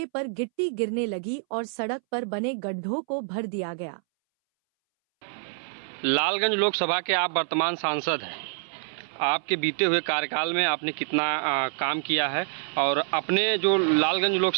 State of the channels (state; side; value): silent; left; 60 dB below the other